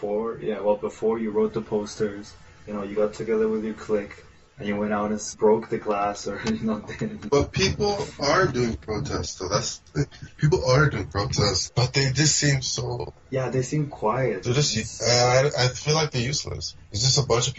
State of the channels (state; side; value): identical; both; correlation 1.00